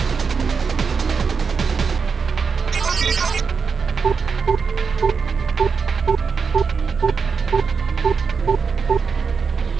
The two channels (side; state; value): left; quieter; 5.5 dB